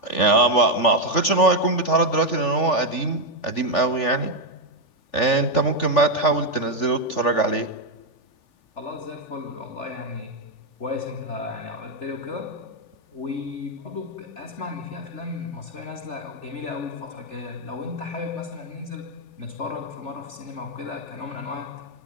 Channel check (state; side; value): late; right; 3.4 ms